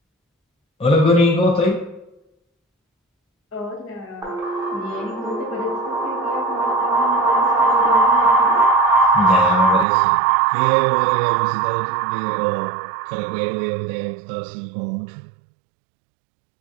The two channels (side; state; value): left; drops out; at 9.9 s